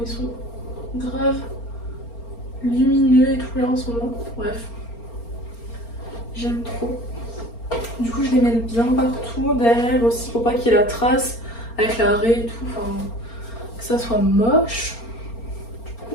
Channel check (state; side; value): late; right; 4.3 ms